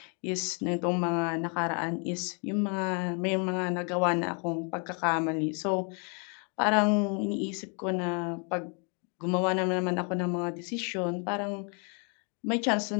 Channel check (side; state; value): right; quieter; 38.0 dB